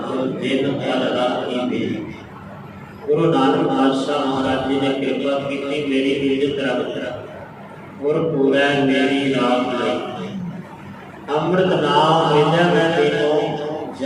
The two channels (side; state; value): both; identical; correlation 1.00